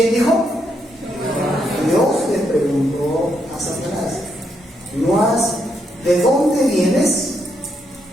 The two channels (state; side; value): normal; both; correlation 0.78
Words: dijo? Dios le preguntó a Satanás, ¿de dónde vienes?